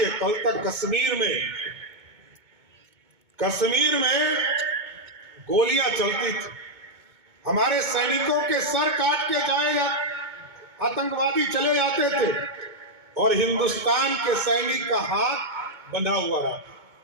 कल तक कश्मीर में गोलियां चलती थी, हमारे सैनिकों के सर काट के जाए आतंकवादी चले जाते थे और हिंदुस्तान के सैनिक का हाथ बंधा हुआ रहा।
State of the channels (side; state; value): left; late; 2.2 ms